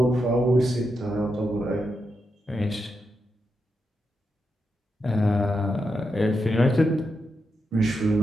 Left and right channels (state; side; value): normal; both; correlation 0.85